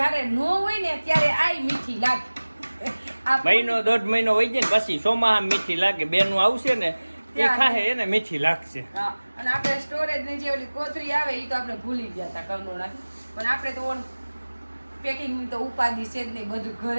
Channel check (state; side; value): inverted; both; correlation -1.00